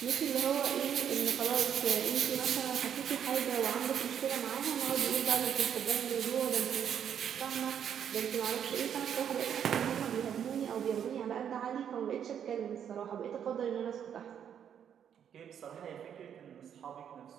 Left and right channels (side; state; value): left; quieter; 8.7 dB